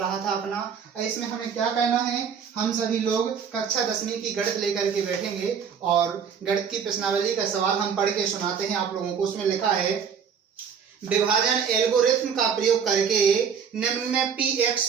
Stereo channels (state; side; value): quieter; left; 7.0 dB